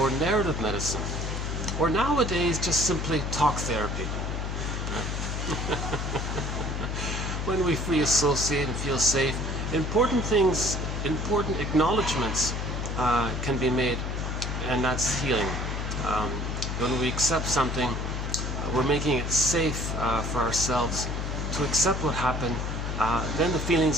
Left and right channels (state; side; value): noise; left; hum, 3 dB below the sound